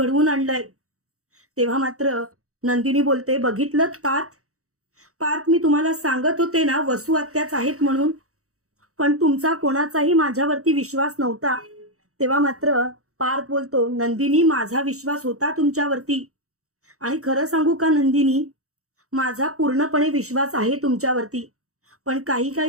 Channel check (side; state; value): left; late; 0.65 ms